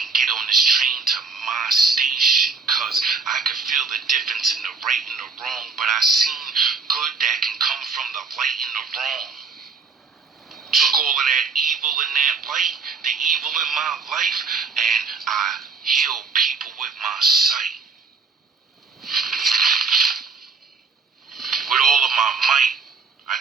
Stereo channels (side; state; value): left; quieter; 4.6 dB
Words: get on this train to my station. Cause I could feel the difference in the right and the wrong. But I seen good that can come from the light and the wrong. Took all of that evil and that light, the evil in my life, and I healed people with my sight. With all of my might, I